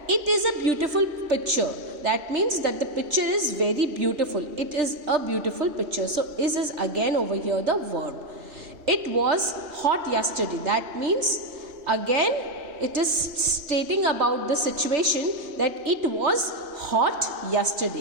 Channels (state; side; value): late; left; 3.4 ms